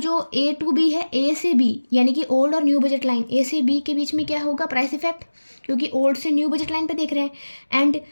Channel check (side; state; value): both; inverted; correlation -1.00